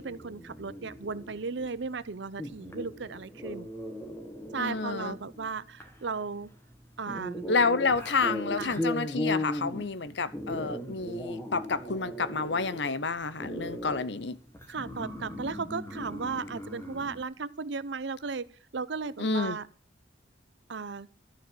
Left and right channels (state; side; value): normal; both; correlation 0.01